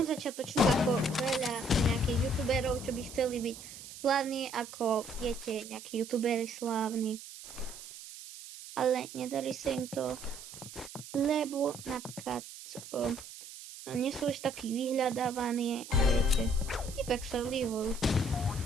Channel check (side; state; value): right; noise; hiss, 14 dB below the sound